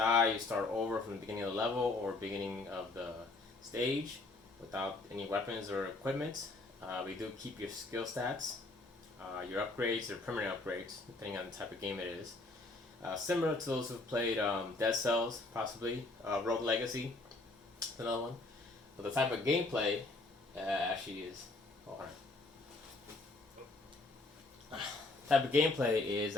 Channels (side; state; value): right; quieter; 3.2 dB